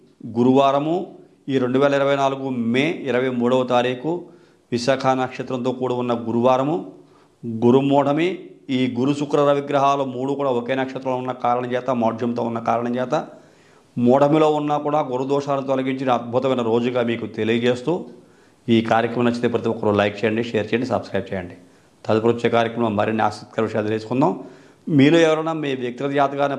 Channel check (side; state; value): both; identical; correlation 1.00